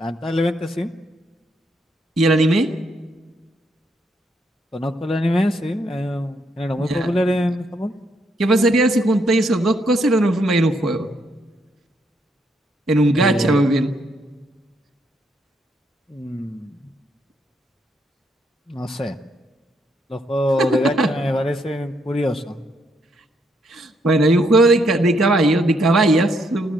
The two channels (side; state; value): both; normal; correlation 0.74